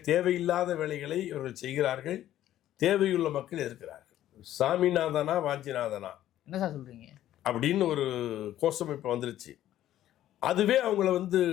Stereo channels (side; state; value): right; quieter; 12.7 dB